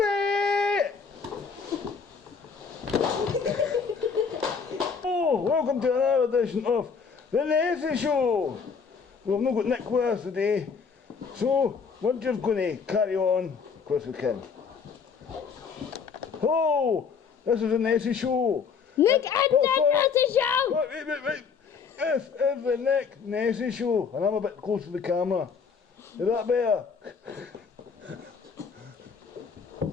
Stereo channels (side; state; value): right; quieter; 5.8 dB